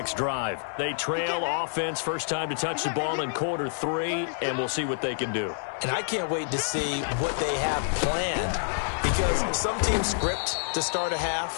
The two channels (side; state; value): right; silent; digital silence